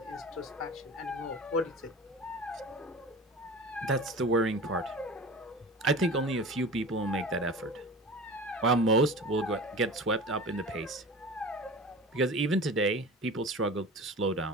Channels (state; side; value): normal; both; correlation 0.35